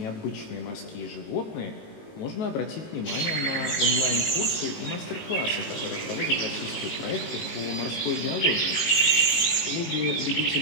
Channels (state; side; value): late; right; 19 ms